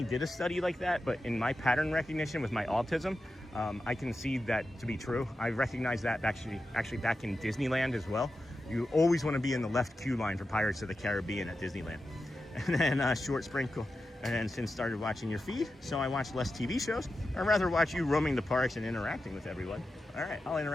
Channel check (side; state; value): both; normal; correlation 0.91